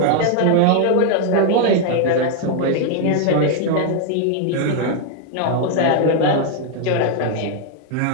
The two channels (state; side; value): different; both; correlation 0.00